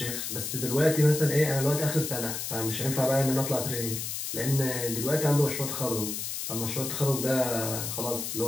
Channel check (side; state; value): left; noise; hiss, 4 dB below the sound